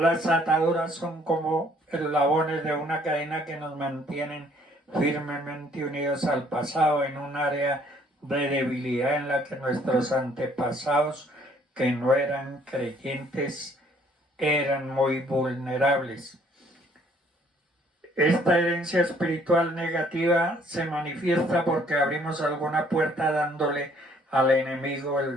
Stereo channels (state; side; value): normal; both; correlation 0.62